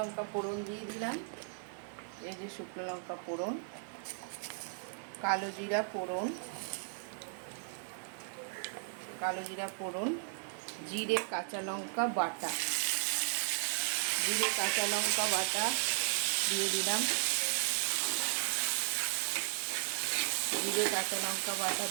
ফোড়ন দিয়ে দিলাম। এই যে শুকনো লঙ্কা ফোড়ন, কালো জিরা ফোড়ন, জিরে কাঁচা লঙ্কা বাটা দিয়ে দিলাম। জিরে কাঁচা লঙ্কা বাটা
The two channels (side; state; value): left; silent; digital silence